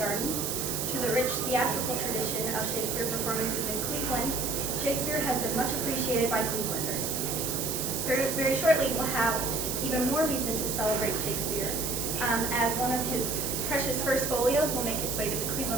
to the rich theatrical tradition of Shakespeare performances in Cleveland, Shakespeare has been much appreciated by Clevelanders. Very, very shortly, we'll have even more reason to celebrate Shakespeare, as one of his precious first folios will make its way to the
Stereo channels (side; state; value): right; noise; hiss, 2 dB below the sound